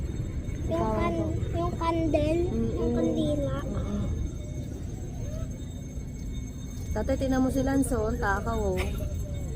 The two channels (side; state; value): both; identical; correlation 1.00